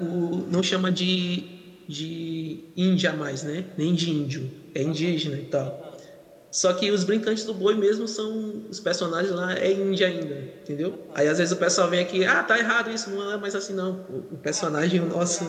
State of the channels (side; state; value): both; identical; correlation 1.00